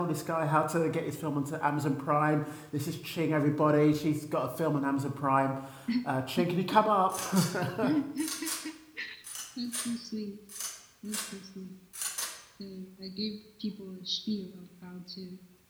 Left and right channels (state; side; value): identical; both; correlation 1.00